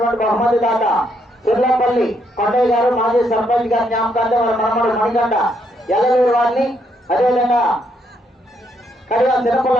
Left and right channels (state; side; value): normal; both; correlation 0.74